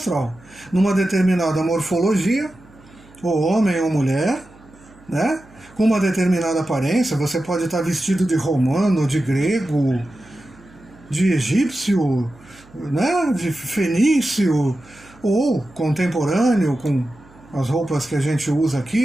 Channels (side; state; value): right; noise; hum, 26 dB below the sound